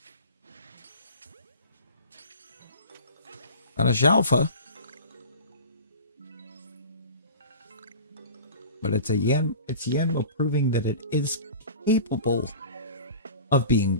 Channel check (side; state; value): both; inverted; correlation -0.39